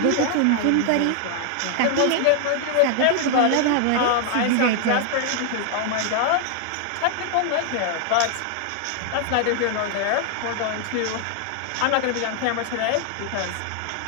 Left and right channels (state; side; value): different; both; correlation 0.00